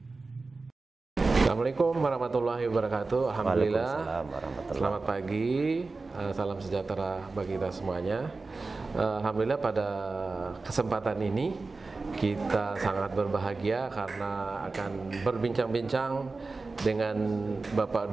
Assalamualaikum warahmatullahi wabarakatuh. Alhamdulillah. Selamat pagi, salam sejahtera bagi kita semuanya. Alhamdulillah pada kesempatan ini kita sangat berbahagia karena akan berbincang-bincang dengan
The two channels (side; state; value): left; quieter; 3.8 dB